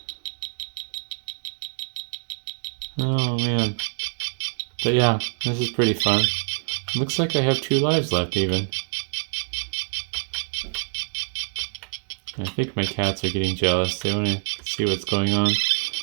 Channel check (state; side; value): silent; left; digital silence